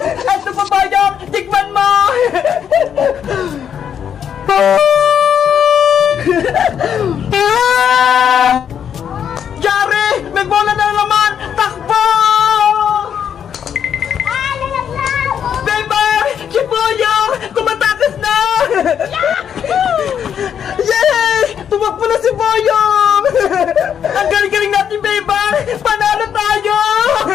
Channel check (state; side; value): quieter; right; 8.5 dB